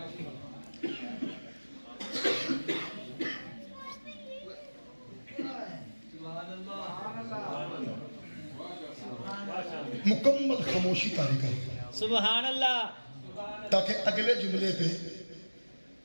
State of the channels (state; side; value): inverted; both; correlation -1.00